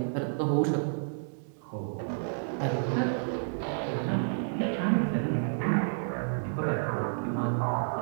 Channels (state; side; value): silent; left; digital silence